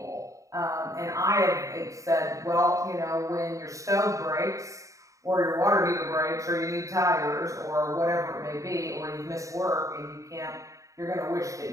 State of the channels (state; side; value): late; left; 0.16 ms